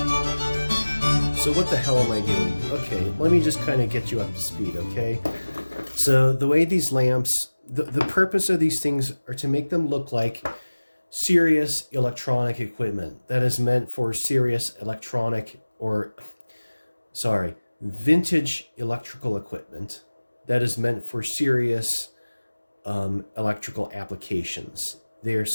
So what the hell am I doing? Okay, let me just kind of get you up to speed, okay? So the way these lamps, the purpose of these things are to make them look like serious electronic equipment that is meant for serious electronic, or sorry, vintage electrical equipment that is meant for serious electrical applications. They're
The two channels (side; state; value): both; inverted; correlation -1.00